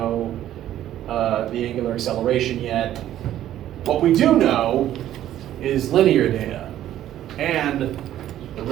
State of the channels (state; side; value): quieter; left; 12.3 dB